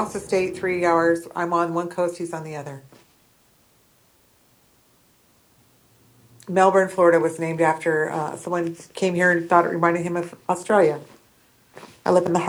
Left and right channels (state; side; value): identical; both; correlation 1.00